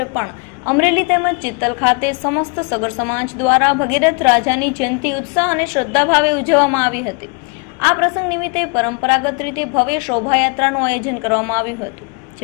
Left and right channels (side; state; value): right; quieter; 32.8 dB